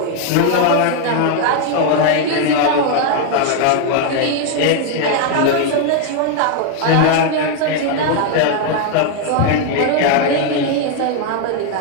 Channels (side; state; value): both; different; correlation 0.00